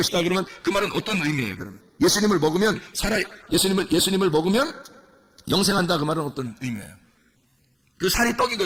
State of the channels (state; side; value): identical; both; correlation 1.00